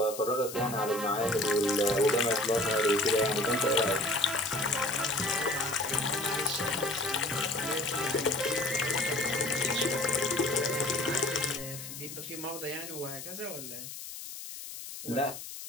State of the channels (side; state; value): left; noise; hiss, 10 dB below the sound